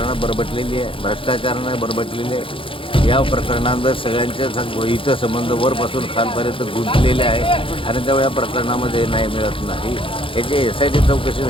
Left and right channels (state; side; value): late; right; 0.25 ms